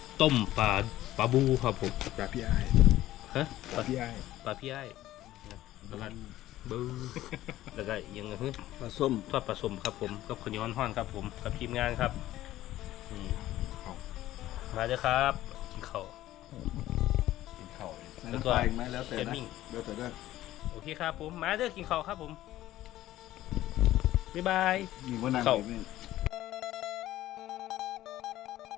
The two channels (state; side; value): quieter; right; 14.7 dB